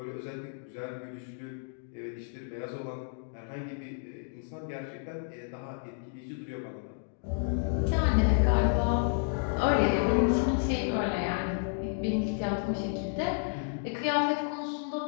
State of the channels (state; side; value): silent; right; digital silence